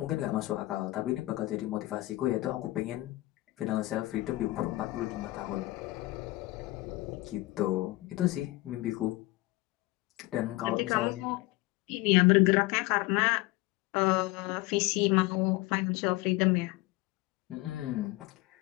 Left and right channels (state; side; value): quieter; right; 19.9 dB